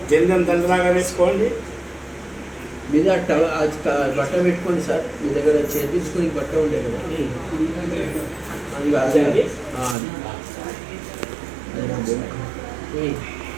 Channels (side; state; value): left; drops out; at 10.0 s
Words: జందం దండలాగా వేసుకోండి. మీద బట్ట పెట్టుకోండి సార్. మీ దగ్గర చేపించుకొని బట్ట ఉండే కదా అది